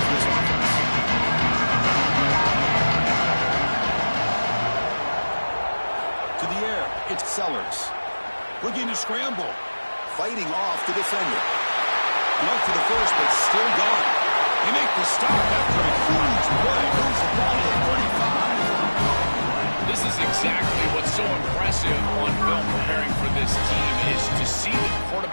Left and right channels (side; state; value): both; inverted; correlation -1.00